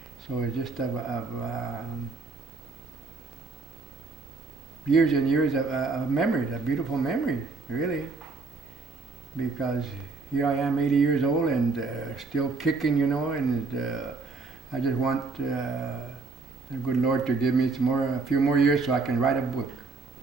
So it's just of years and years of memories, of beautiful memories, really. Because here I am, 80 years old, and still kicking, you know, and I just want the good Lord to give me a few more years so I can write a book.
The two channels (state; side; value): quieter; left; 4.0 dB